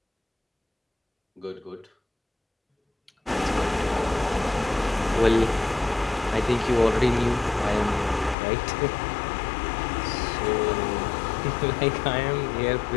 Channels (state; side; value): drops out; right; at 8.3 s